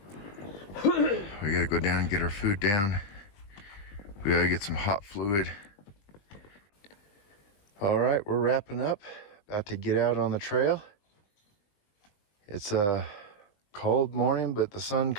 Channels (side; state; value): right; late; 20 ms